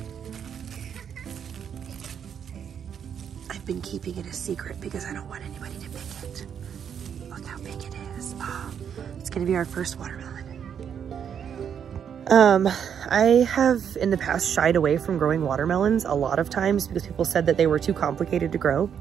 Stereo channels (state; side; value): quieter; left; 8.1 dB